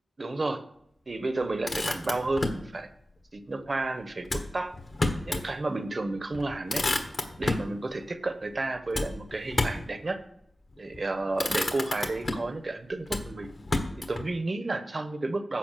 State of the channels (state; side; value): normal; both; correlation 0.94